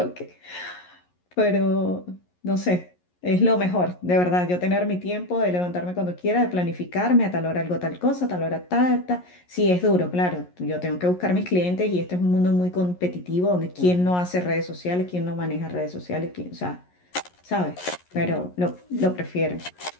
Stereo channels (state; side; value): late; right; 11 ms